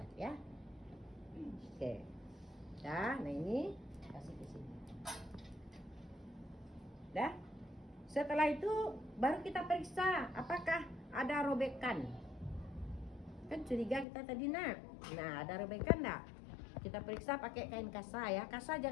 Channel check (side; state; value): right; drops out; at 14.1 s